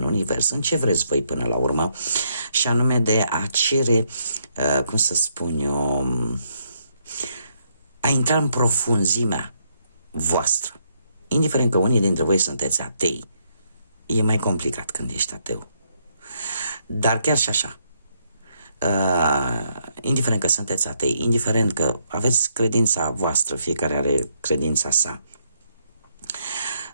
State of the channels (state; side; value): inverted; both; correlation -0.75